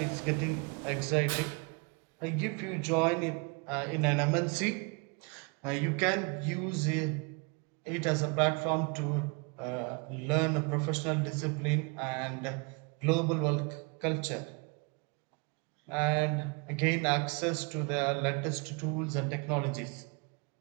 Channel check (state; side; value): quieter; left; 31.5 dB